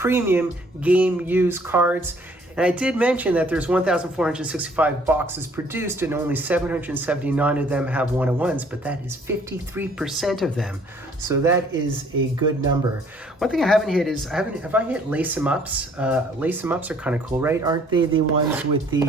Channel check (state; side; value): normal; both; correlation 0.60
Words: game use cards. And I did mention that there's 1,465 boxes produced and only 779 of them have 101s, but that is 53% of them. So that is a good number. One thing I haven't hit is, have I hit lace 'em ups? Lace 'em ups are kind of cool, right? Aren't they the ones with the